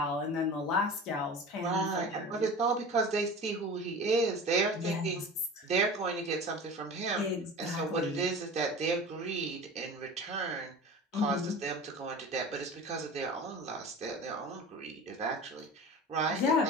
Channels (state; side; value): normal; both; correlation 0.36